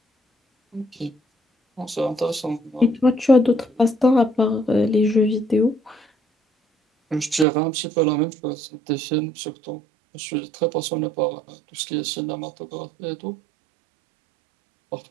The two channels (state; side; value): drops out; left; at 7.5 s